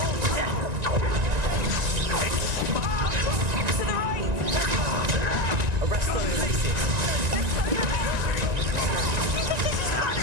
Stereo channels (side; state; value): left; late; 1.9 ms